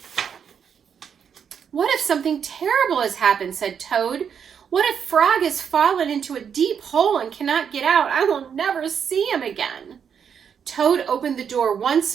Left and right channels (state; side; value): quieter; left; 7.5 dB